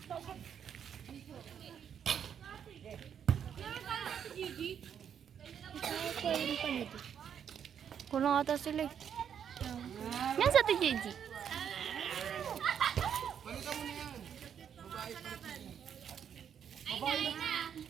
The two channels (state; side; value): quieter; left; 8.3 dB